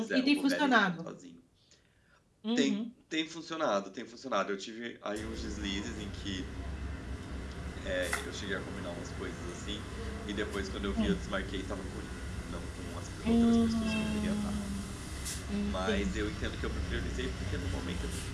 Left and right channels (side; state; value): both; identical; correlation 1.00